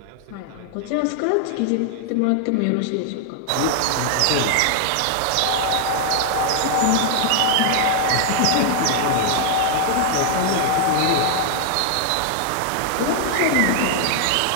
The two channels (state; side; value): different; both; correlation 0.00